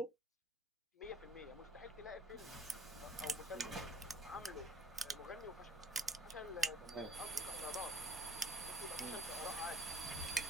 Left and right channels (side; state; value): both; normal; correlation 0.51